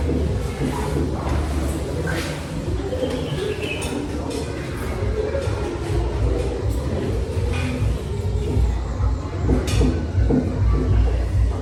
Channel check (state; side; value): identical; both; correlation 1.00